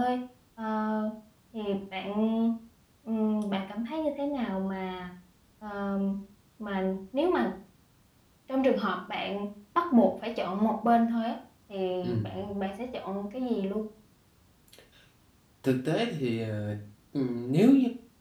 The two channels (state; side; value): identical; both; correlation 1.00